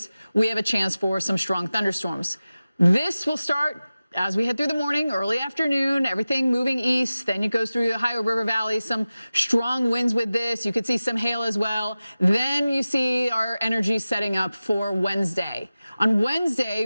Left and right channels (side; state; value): both; inverted; correlation -0.96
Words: we have a chance for some strong thunderstorms. This will start as we head through the morning, early afternoon, everything moving east. Then it goes through the Ohio River Valley, some strong winds with this. You could see some hail as well. Then you see our energy setting up for Wednesday. On Wednesday,